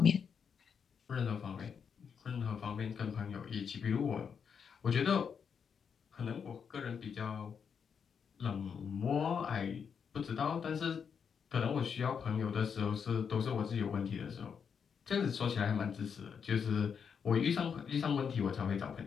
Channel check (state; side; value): quieter; right; 6.8 dB